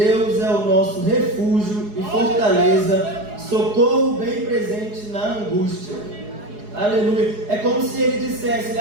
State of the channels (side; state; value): left; late; 4.8 ms